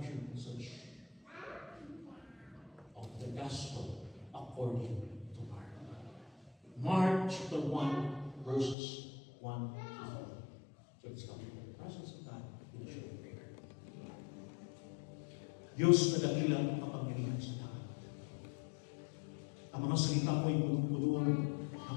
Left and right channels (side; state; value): right; drops out; at 8.8 s